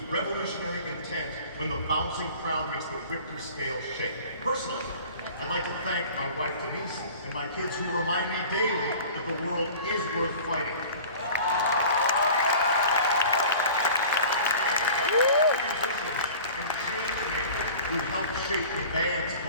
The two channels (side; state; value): both; inverted; correlation -0.42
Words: revolutionary intent when the bouncing crowd makes the Richter scale shake? Personally, I'd like to thank my wife Denise and my kids who remind me daily that the world is worth fighting. Musicians and change makers who helped shape the band's